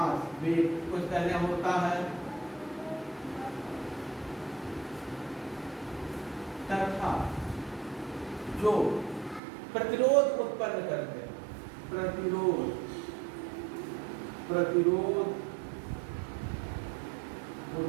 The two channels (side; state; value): left; drops out; at 9.4 s